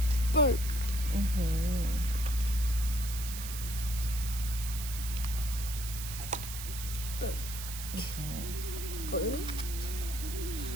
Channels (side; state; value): right; noise; hiss, 8 dB below the sound